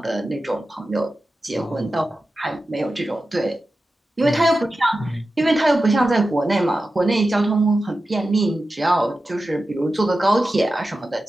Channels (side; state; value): both; normal; correlation 0.93